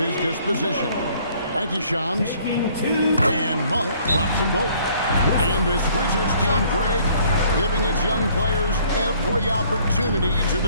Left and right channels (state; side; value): inverted; both; correlation -0.59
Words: disposition. Thank you, Shams. And Monk drops them both. And this Wizards team, Greg, giving its young players every opportunity to